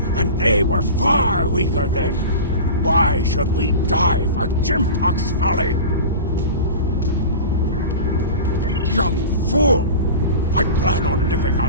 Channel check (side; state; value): both; inverted; correlation -0.33